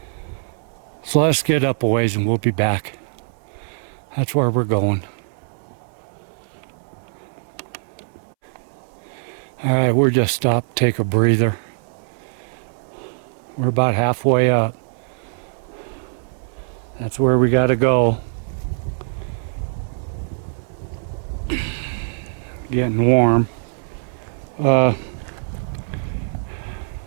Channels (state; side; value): silent; left; 64 dB below the other